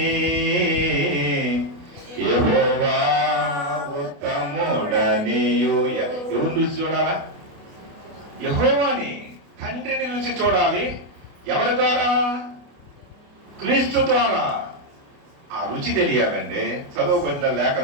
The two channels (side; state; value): left; late; 28 ms